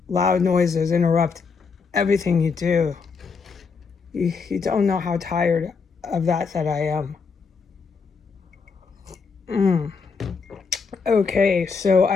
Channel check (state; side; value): quieter; right; 5.2 dB